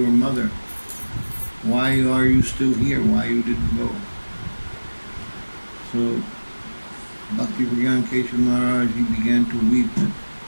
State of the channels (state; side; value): inverted; both; correlation -1.00